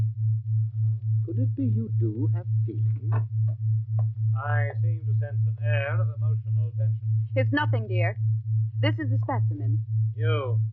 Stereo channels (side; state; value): right; late; 0.060 ms